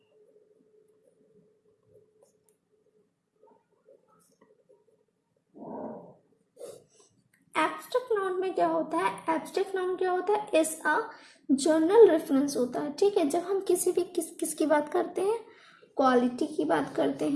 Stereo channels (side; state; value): both; identical; correlation 1.00